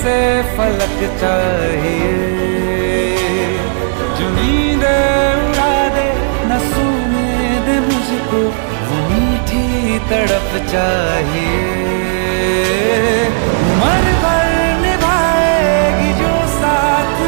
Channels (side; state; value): left; silent; digital silence